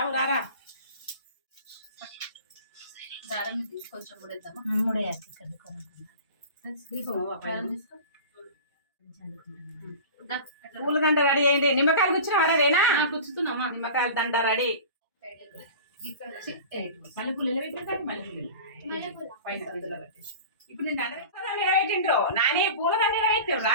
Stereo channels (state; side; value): inverted; both; correlation -0.36